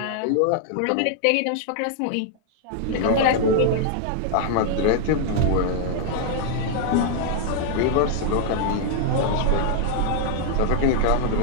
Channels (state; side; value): different; both; correlation 0.00